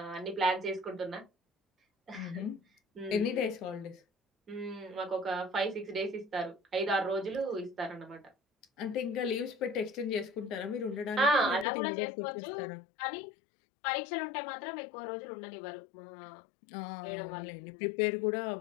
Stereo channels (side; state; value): right; drops out; at 11.7 s